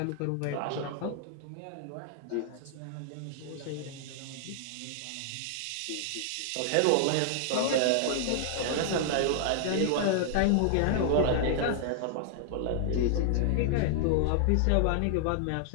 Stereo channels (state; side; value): different; both; correlation -0.01